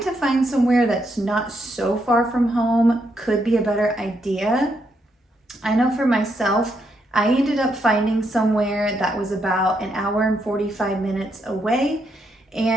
to find somewhere that's not so far from home could be a better idea. I know for myself, I ended up finding somewhere that was about an hour and 45 minutes away,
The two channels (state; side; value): normal; both; correlation 0.78